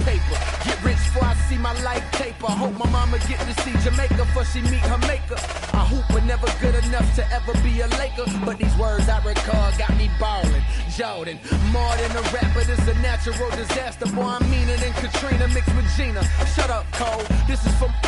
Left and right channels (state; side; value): identical; both; correlation 1.00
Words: Get rich before I see my life taper. Hope my mama get to see Jamaica before she meet her maker. I hoop but never good enough to ever be a Laker. But these words I recall got me ballin'. Jordan, more than a rapper, this a natural disaster. Boy, I'm meaner than Katrina mixed with Gina. Shut up, Cole. This is for